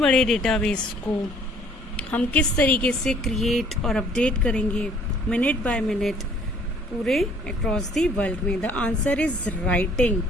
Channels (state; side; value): normal; both; correlation 0.58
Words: डेटाबेस को हम किस तरीके से क्रिएट और अपडेट करेंगे मिनट बाय मिनट पूरे अक्रॉस दी वर्ल्ड में? The answer is writing.